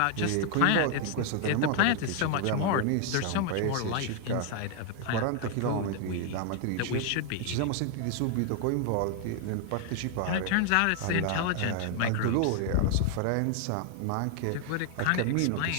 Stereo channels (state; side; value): different; both; correlation 0.00